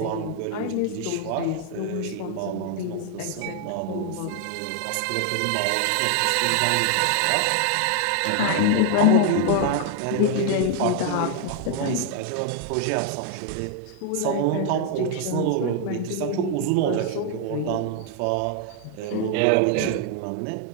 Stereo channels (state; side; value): different; both; correlation 0.00